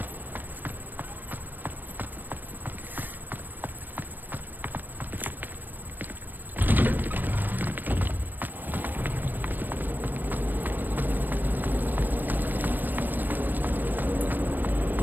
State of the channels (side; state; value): left; late; 0.090 ms